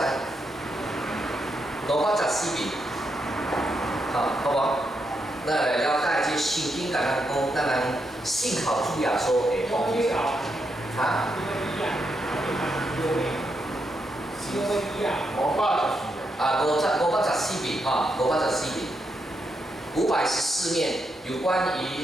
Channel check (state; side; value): normal; both; correlation 0.82